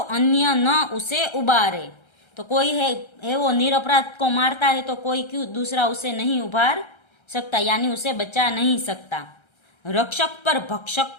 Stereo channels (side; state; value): right; late; 1.3 ms